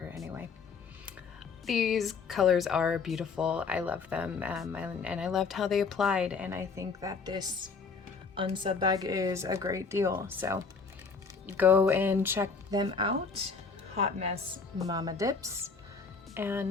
anyway. These colors are beautiful. I love them, and I loved how they applied, and I think that this Unsub bag is a great deal. So go and check them out. Hot Mess Mama Dips.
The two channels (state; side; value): quieter; right; 4.9 dB